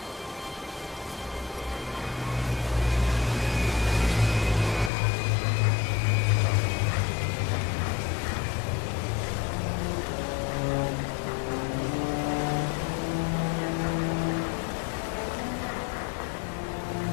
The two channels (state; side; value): drops out; right; at 4.9 s